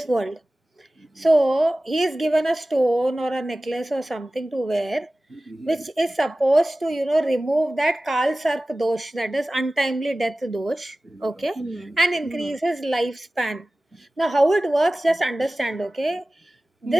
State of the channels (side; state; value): both; normal; correlation 0.97